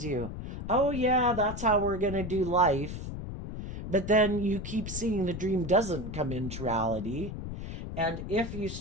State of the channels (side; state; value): left; noise; rumble, 7 dB below the sound